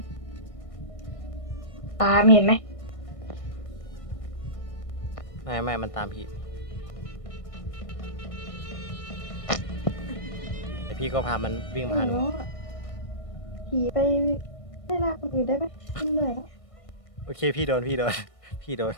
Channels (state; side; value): late; right; 1.6 ms